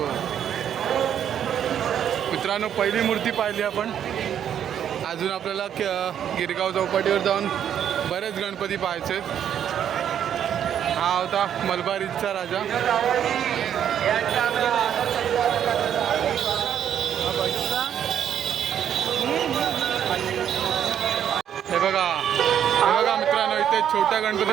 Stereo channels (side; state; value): left; quieter; 9.4 dB